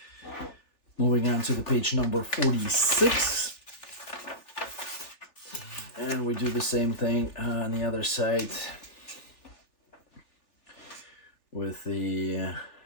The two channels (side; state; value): right; late; 3.4 ms